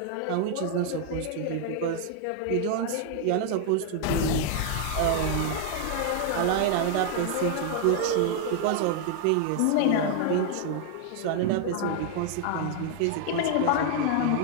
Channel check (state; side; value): different; both; correlation 0.00